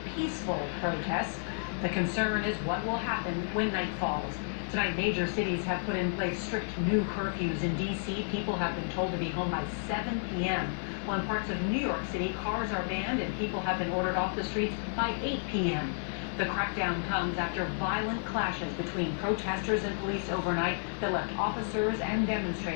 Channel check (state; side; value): silent; right; digital silence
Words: peaceful protests. The concern is what will happen when night falls. Tonight, major cities have put in place strict new curfews. In D.C., people have been told to be home by 7 p.m. While in parts of New York City, cars are banned and people have been ordered off the streets by 8 p.m. The crackdown comes after violent clashes between protesters and police overnight that left officers and